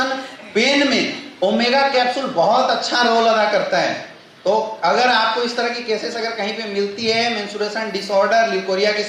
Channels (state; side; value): identical; both; correlation 1.00